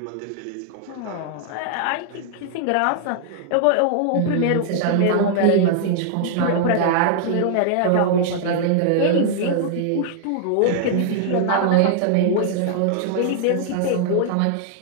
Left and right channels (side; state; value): both; different; correlation -0.01